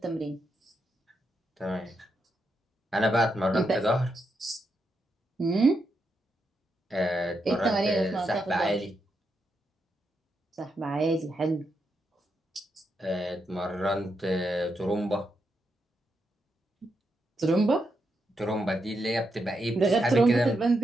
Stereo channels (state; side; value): normal; both; correlation 0.83